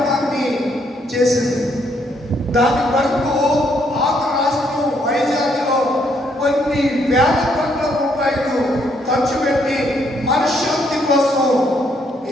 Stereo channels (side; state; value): both; normal; correlation 0.72